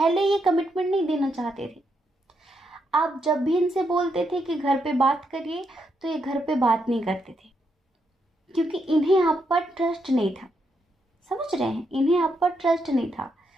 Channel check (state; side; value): normal; both; correlation 0.80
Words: ये कमिटमेंट नहीं देना चाहते थे। आप जब भी इनसे बोलते थे कि घर पे बात करिए, तो ये घर पे बात नहीं करते थे। क्योंकि इन्हें आप पर ट्रस्ट नहीं था। समझ रहे हैं, इन्हें आप पर ट्रस्ट नहीं था,